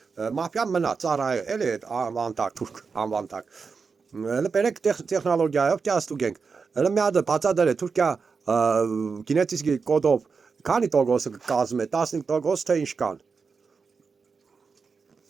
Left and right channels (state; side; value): quieter; left; 5.1 dB